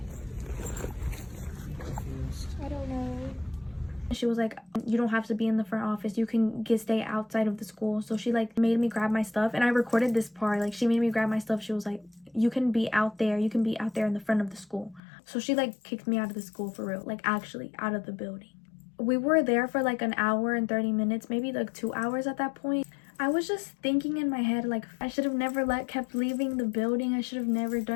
I don't know. She was like, you don't have to be in the front office, you can stay outside of the school. So she like made me grab my stuff, and I recorded this part. Like, she made me grab my stuff. She was like, you can be out there in the front of the school. So she like kicked me out of the school for real, like actually out of the building. We were there for like an hour and 30 minutes, maybe like 2 hours at that point. I was just thinking in my head, like, I should have never kept leaving the building. I should have never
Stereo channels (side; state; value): right; drops out; at 15.0 s